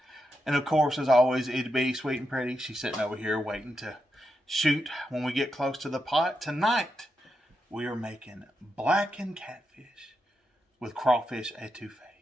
And of course, as always, it'd be sweet and pretty. She's sitting over here waiting to shoot when we get close to the pot. Tonight, we are making blackened catfish with crawfish etouffee.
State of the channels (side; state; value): both; normal; correlation 0.86